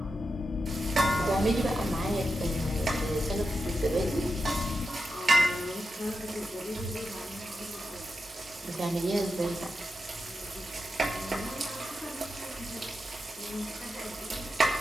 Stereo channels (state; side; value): normal; both; correlation 0.89